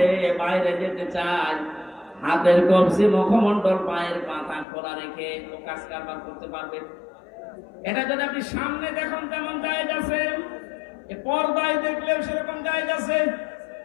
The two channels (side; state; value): right; drops out; at 4.7 s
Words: বাইরে যেতে চায়, হাতের কবজি, মুখমণ্ডল, পায়ের পাতা খোলা রেখে ও কাজ কারবার করতে পারবে। এটা যদি আপনি সামনে দেখুন তেমন জায়েজ আছে, পর্দায় দেখলেও সেরকম জায়েজ আছে।